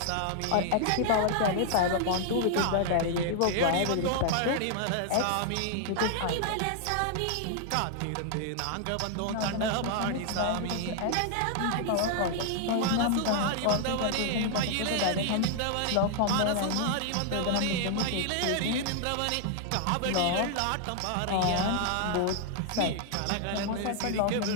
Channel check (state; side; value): different; both; correlation 0.00